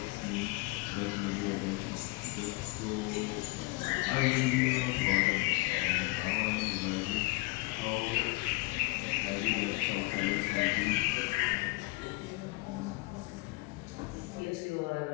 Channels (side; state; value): right; quieter; 23.8 dB